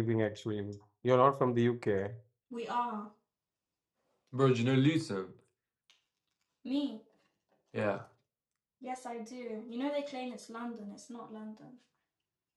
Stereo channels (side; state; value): both; identical; correlation 1.00